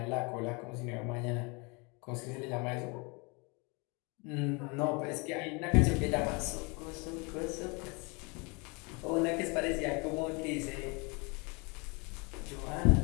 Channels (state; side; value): quieter; right; 30.0 dB